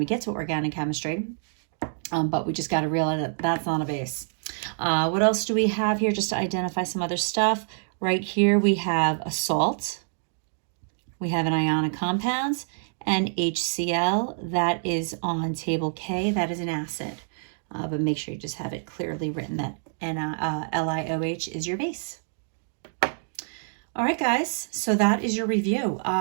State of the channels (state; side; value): silent; left; digital silence